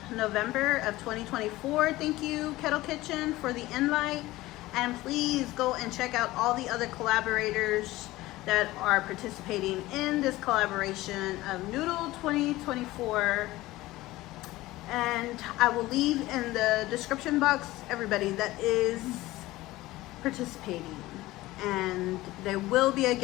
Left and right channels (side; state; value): right; quieter; 17.9 dB